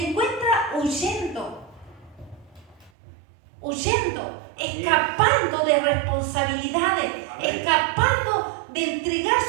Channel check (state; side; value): drops out; left; at 2.9 s